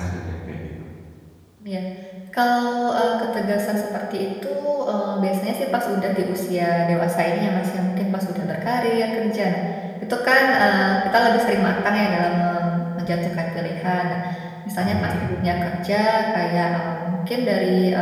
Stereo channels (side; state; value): both; identical; correlation 1.00